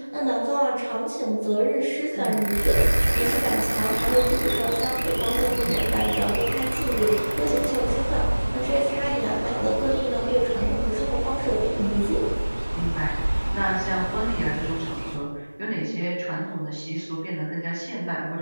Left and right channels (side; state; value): both; inverted; correlation -1.00